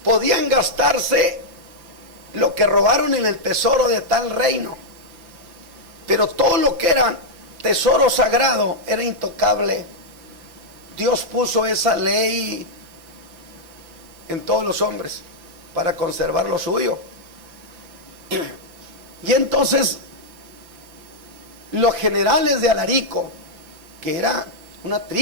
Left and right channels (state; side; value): late; left; 5.9 ms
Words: podían gastarse lo que robaron en el tesoro de tal reino, pero todo lo que era tesoro sagrado era intocable. Dios puso esa ley en todos los hombres para conservar lo suyo. Y entonces los generales de Alarico, que era una